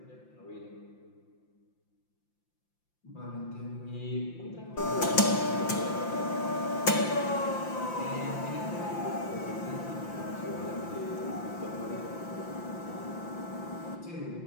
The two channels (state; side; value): late; right; 5.8 ms